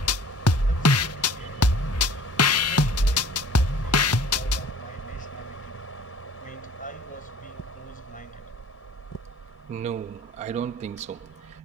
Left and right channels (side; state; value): both; normal; correlation 0.49